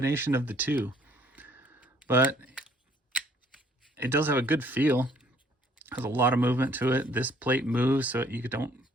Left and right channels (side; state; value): both; normal; correlation 0.61